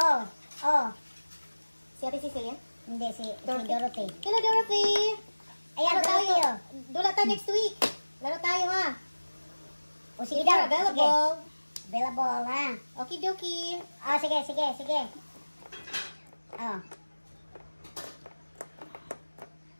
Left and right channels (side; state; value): both; inverted; correlation -1.00